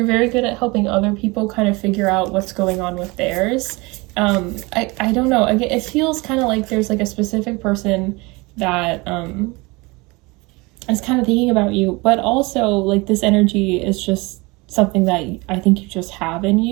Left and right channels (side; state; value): left; quieter; 25.0 dB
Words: very good at helping other people kind of figure out what's going on with theirs. I don't know. Again, it feels kind of like there's like a specific person that is kind of thinking about you, but also like this energy is just something that I think you just have in